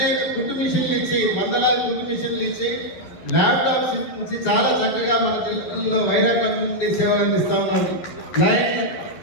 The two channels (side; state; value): right; late; 12 ms